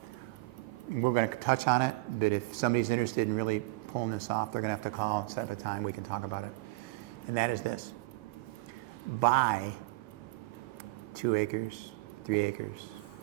We're going to touch on it, but if somebody's interested in really pulling this off, they're going to have to call and set up a time we can talk about it. And that is this: buy 2 acres, 3 acres,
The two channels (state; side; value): quieter; left; 23.1 dB